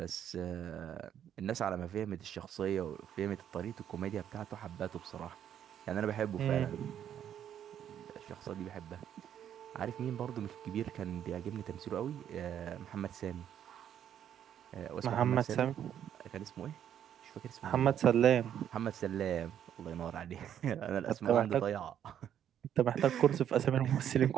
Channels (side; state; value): left; quieter; 9.8 dB